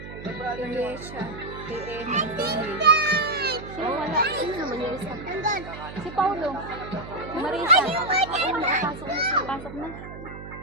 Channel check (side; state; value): right; noise; hum, 12 dB below the sound